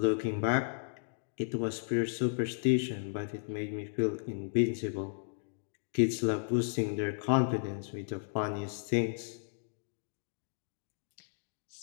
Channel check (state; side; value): silent; right; digital silence